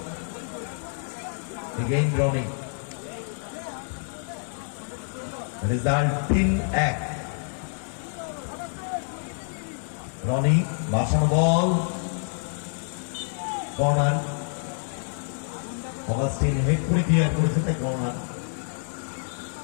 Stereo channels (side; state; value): right; silent; 57 dB below the other